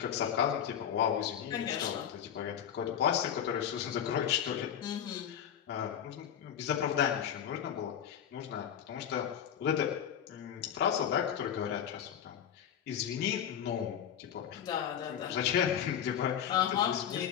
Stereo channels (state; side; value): quieter; right; 9.3 dB